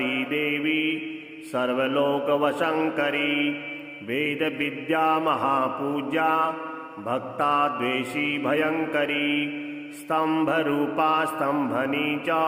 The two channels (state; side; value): identical; both; correlation 1.00